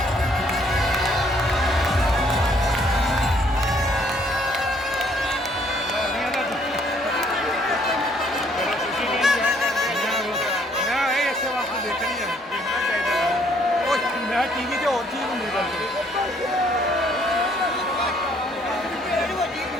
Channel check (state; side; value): normal; both; correlation 0.65